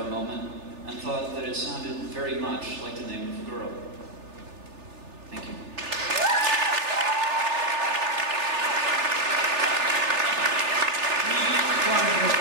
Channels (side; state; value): left; late; 3.4 ms